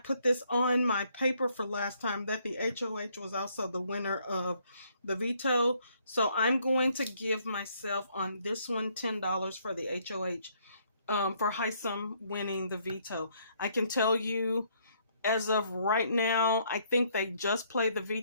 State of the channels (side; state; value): both; inverted; correlation -0.68